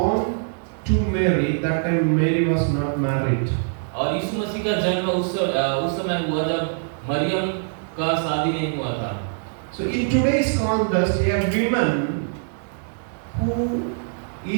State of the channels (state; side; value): silent; left; 63 dB below the other